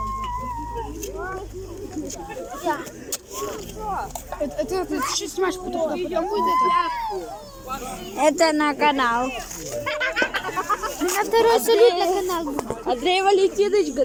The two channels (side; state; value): both; identical; correlation 1.00